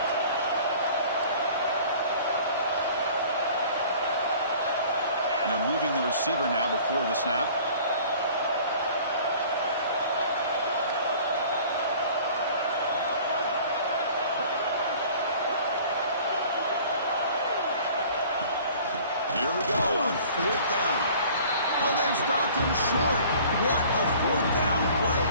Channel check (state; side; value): inverted; both; correlation -0.49